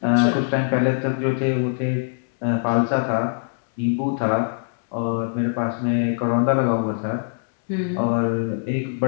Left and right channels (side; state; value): right; silent; digital silence